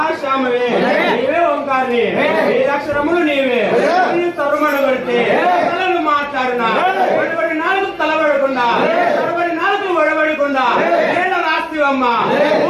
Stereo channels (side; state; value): both; identical; correlation 1.00